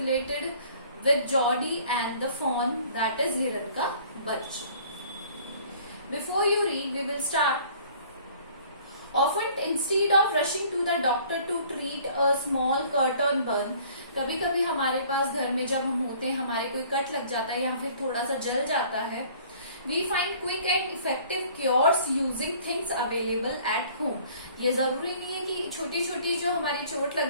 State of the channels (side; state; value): both; inverted; correlation -0.53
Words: with Geordie and the fawn, that is हिरन का बच्चा. Before you read, we will start. Often instead of rushing to the doctor to treat a small cut or burn, कभी कभी हमारे पास घर में जब हम होते हैं, हमारे कोई कट लग जाता है या फिर थोड़ा सा जल जाता है, we find quick and effective cures using things available at home. ये जरूरी नहीं है कि छोटी छोटी जो हमारी चोट लग